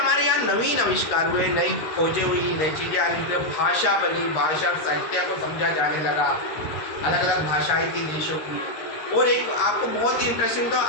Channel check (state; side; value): late; right; 13 ms